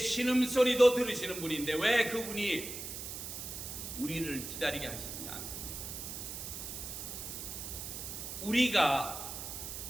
들으시는 분인데 왜 그분이 우리를 기다리게 하시지 않습니까? 우리가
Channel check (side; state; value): right; noise; hiss, 7 dB below the sound